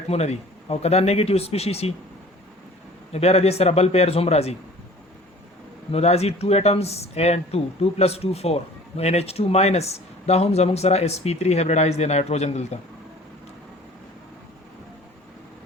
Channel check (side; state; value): both; normal; correlation 0.47